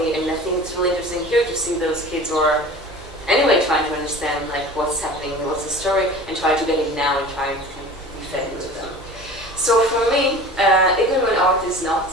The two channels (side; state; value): right; noise; hum, 20 dB below the sound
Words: And I think it's really interesting here to see those kids who are anyway trying to understand like what's happening, what's the story, and trying to get it now and trying to be fed into them. So for me, even when art is not